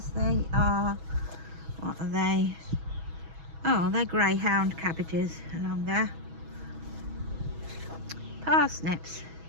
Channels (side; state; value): left; late; 6.2 ms